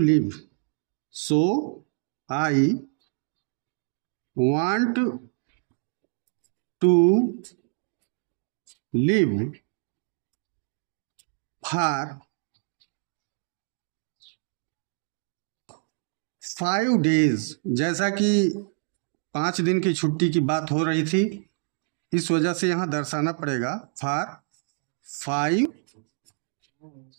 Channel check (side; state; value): left; silent; 60 dB below the other